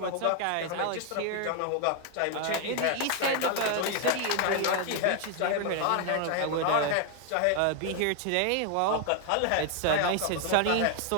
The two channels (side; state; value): both; different; correlation 0.00